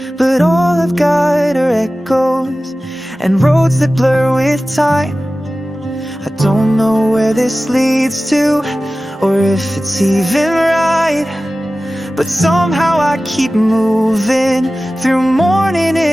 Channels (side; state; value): both; normal; correlation 0.96